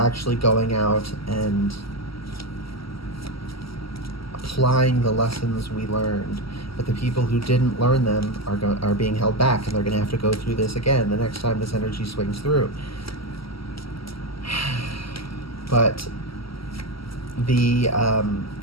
going out and applying the lessons we learned. But the people who didn't learn them are being held back, and they're going to have to go through this again the next time this energy swings through. But the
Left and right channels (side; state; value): right; late; 0.75 ms